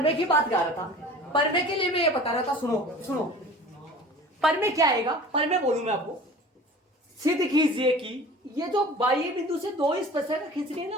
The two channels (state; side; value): normal; both; correlation 0.41